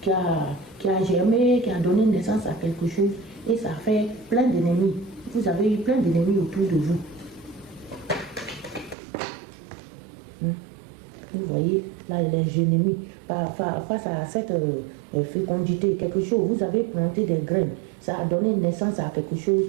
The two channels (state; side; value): drops out; left; at 9.0 s